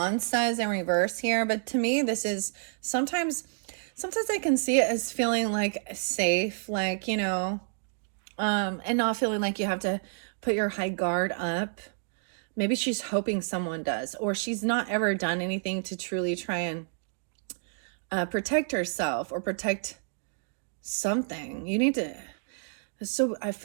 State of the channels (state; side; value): silent; left; digital silence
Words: says in reverse here, but to me, this is sometimes I can see it as feeling like safe, like, and not feeling like you have to put your high guard up. Maybe she's hoping someone does, or she's not ever done anything to truly try and protect herself or protect something. So I